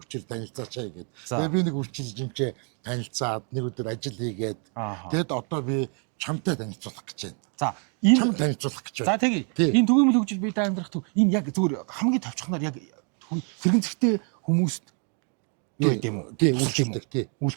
танилцаачаа гэгээд. Тэгээ би нэг үрчилж юмчээ танилцаад нэг өдөр ажил хийгээд. Тэгэд одоо би чамтай танилцуулах гэж байна. За, чам танилцуулах гэж байна. За тэгье. Энэ түгээмэл хөгжил бие даа амьдрах төв энэ яг зүгээр хамгийн товчхоноор яг тэрэгэн зэрэгтэй хүмүүст юу гэдэг юм уу? Тий, үйлчилдэг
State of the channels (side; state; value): left; quieter; 39.6 dB